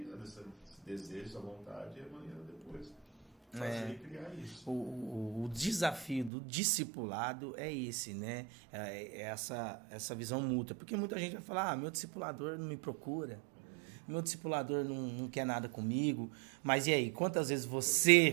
esse desejo, essa vontade, e amanhã depois fazer e criar isso. O desafio do discipulado é esse, né? É essa visão mútua. Porque muita gente vai falar, meu discipulador não me procura, meu discipulador não quer nada comigo. Mas e aí, quantas vezes você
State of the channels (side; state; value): left; drops out; at 6.3 s